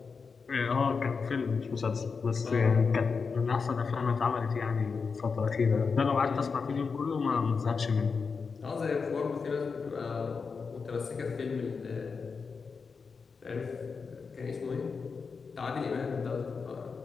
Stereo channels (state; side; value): quieter; right; 5.2 dB